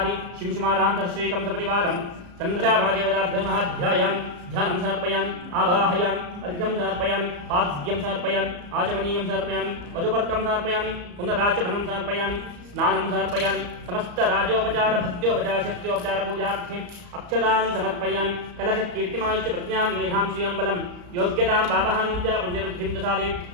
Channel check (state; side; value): late; left; 34 ms